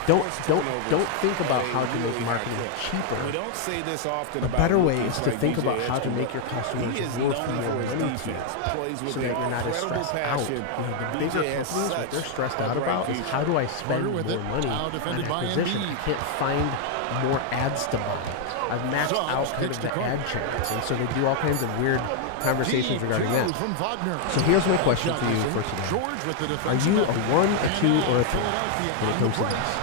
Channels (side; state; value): both; different; correlation 0.00